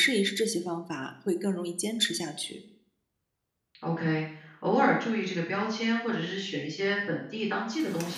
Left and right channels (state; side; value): identical; both; correlation 1.00